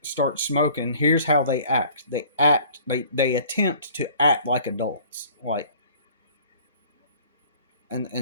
starts smoking, here's how they act. They attempt to act like adults. Like,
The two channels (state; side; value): inverted; both; correlation -0.51